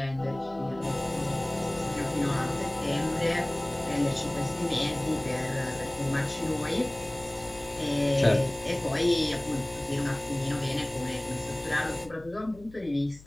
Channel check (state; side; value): noise; left; hum, 21 dB below the sound